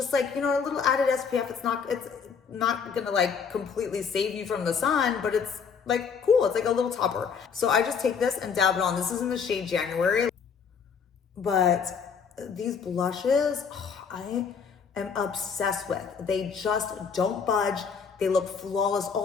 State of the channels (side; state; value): right; quieter; 6.3 dB